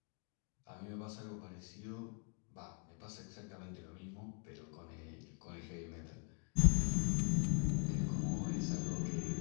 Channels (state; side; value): quieter; right; 39.1 dB